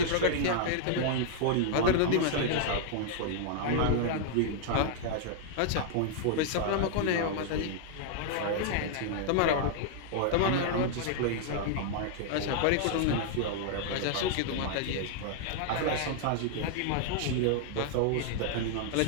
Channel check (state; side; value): different; both; correlation -0.01